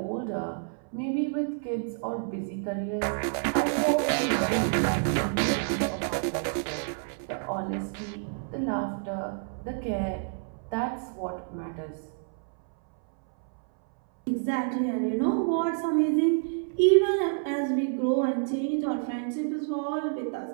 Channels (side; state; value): left; silent; 59 dB below the other